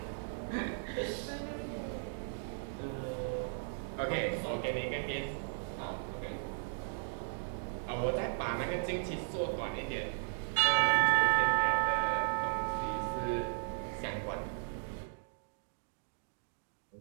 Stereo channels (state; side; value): silent; left; digital silence